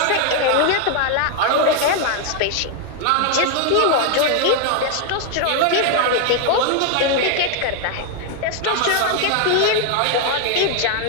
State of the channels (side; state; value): both; different; correlation 0.01